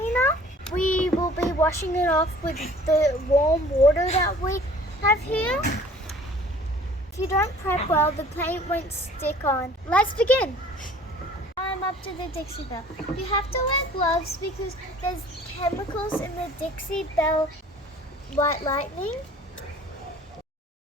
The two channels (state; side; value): normal; both; correlation 0.50